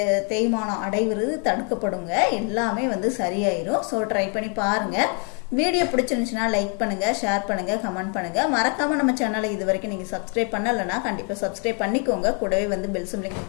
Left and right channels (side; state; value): right; quieter; 38.9 dB